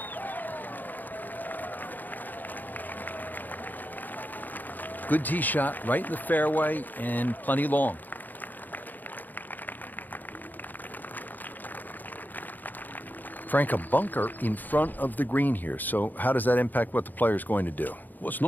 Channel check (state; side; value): late; right; 0.086 ms